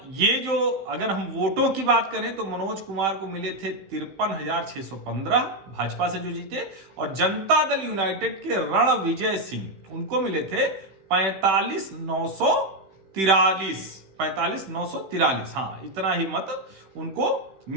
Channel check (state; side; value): late; left; 16 ms